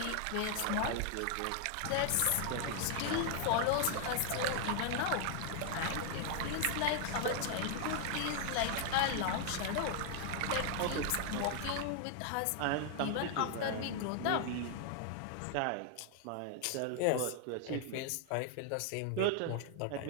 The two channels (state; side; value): different; both; correlation 0.00